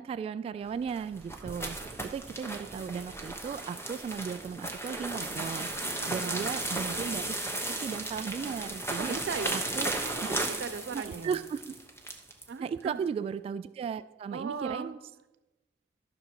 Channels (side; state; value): left; quieter; 3.8 dB